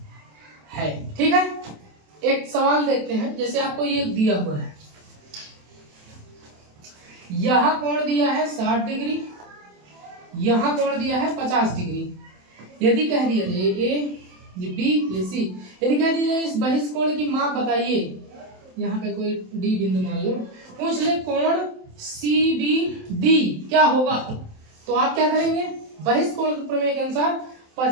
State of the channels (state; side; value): late; left; 27 ms